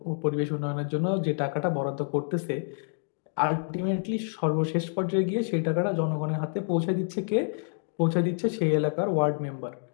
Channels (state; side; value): silent; right; digital silence